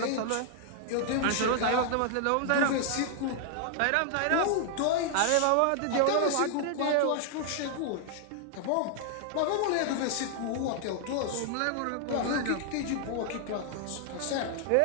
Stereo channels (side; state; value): both; different; correlation 0.00